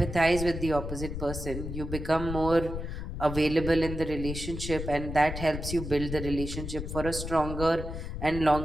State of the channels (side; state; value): left; noise; rumble, 6 dB below the sound